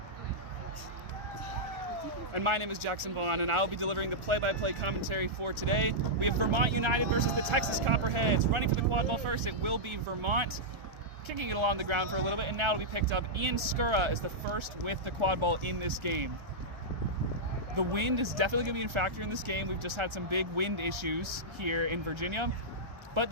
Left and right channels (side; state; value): left; late; 1.4 ms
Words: And my name is Jackson Vaughn, and I'll be delivering the play-by-play commentary for today. We have Vermont United versus the Texas Copperheads. Running for the quad ball first, it will be Vermont. Kicking it along the ground for a little bit, and now it'll be picked up. Ian Skura is the first with the quad ball in this game. The wind is definitely going to be a factor in this game. We've just had some big wind issues here in Virginia, but